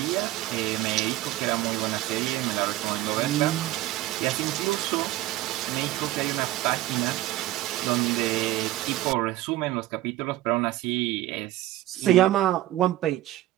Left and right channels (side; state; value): left; quieter; 15.6 dB